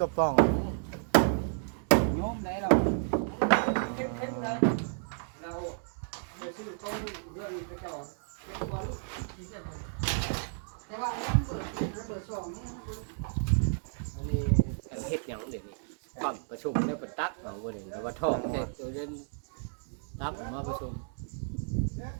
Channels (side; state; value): left; silent; digital silence